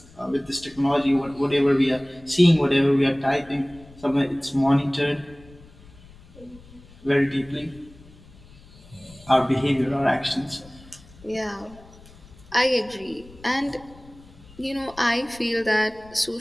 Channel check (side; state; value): left; noise; rumble, 23 dB below the sound